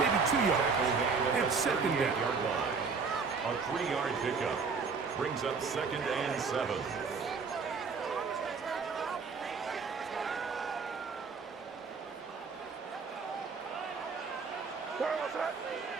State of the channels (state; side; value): quieter; left; 5.1 dB